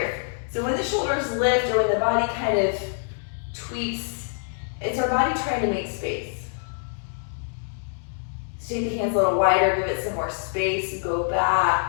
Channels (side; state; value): right; silent; digital silence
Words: So when the shoulders lift or when the body kind of tweaks, it's our body trying to make space. So take the hands a little wider, give it some more space, go